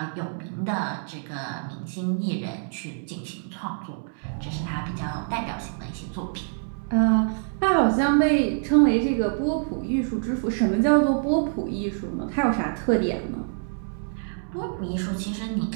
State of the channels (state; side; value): silent; left; digital silence